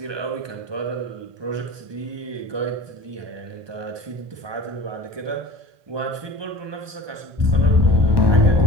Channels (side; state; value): left; late; 1.2 ms